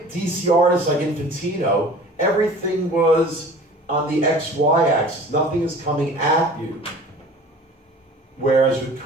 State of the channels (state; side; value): normal; both; correlation 0.43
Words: DC artists like Infantino, everything was on the XY axis. Nothing is coming at you. Whereas with